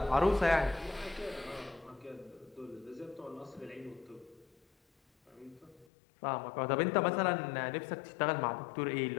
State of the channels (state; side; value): drops out; right; at 5.9 s